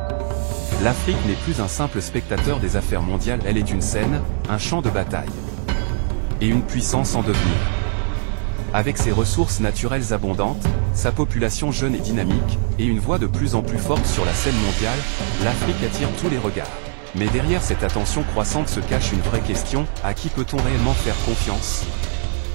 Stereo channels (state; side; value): silent; left; digital silence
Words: L'Afrique n'est plus un simple spectateur des affaires mondiales, elle est une scène, un champ de bataille. Et une puissance en devenir. Avec ses ressources naturelles abondantes, sa population jeune et dynamique, et une voix de plus en plus forte sur la scène mondiale, l'Afrique attire tous les regards. Mais derrière cette attention croissante se cache une vraie question, à qui peut-on réellement faire confiance?